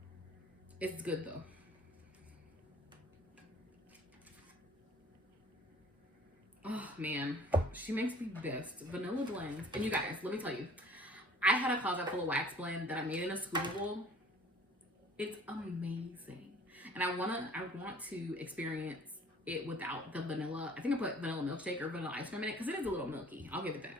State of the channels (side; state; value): both; normal; correlation 0.52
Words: it's good though. Oh man, she makes the best vanilla blends. And you guys, let me tell you, I had a closet full of wax blend that I made in a scoopable. It's amazing. And I want to experience it without the vanilla. I think I put vanilla milkshake or vanilla ice cream in it because it is a little milky. I'll give it